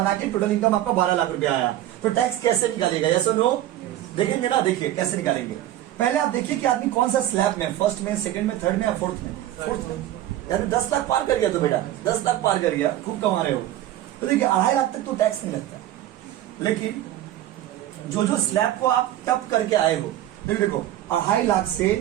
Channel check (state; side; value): quieter; left; 13.4 dB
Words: के टोटल इनकम आपका 12 लाख रुपया आया, तो टैक्स कैसे निकालिएगा? यस और नो? देखेंगे ना, देखिए कैसे निकालेंगे। पहले आप देखिए कि आदमी कौन सा स्लैब में, फर्स्ट में, सेकंड में, थर्ड में या फोर्थ में? फोर्थ में। यार 10 लाख पार कर गया तो बेटा, 10 लाख पार कर गया, खूब कमा रहे हो। तो देखिए 2.5 लाख तक तो टैक्स नहीं लगता, लेकिन जो जो स्लैब को आप टप करके आए हो, देखो 2.5 लाख से